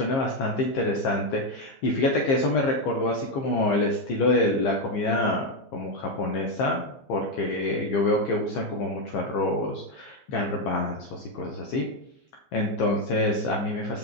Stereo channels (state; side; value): late; right; 15 ms